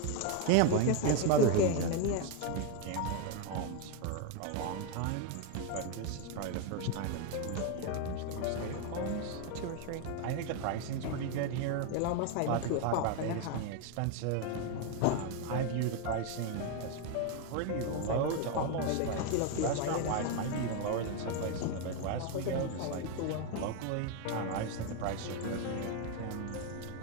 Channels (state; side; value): different; both; correlation 0.02